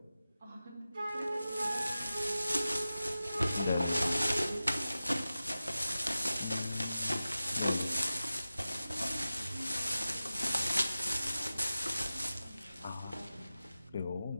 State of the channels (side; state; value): both; inverted; correlation -0.94